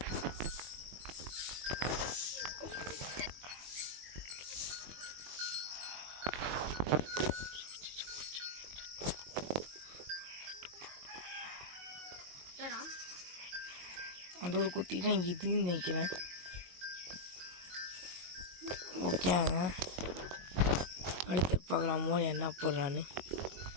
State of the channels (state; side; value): late; left; 22 ms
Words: அந்த ஒரு குட்டி தான் இதுன்னு நினைக்கிறேன். ஓகேங்க, அடுத்து பார்க்கலாம் மோடி என்ன போடுறான்னு.